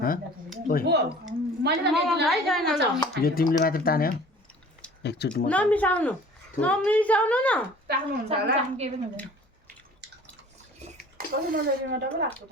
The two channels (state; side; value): normal; both; correlation 0.47